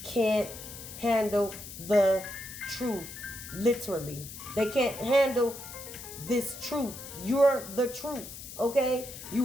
can't handle the truth. Literally. They can't handle this truth. You're the truth. Okay?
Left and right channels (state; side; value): noise; left; hiss, 12 dB below the sound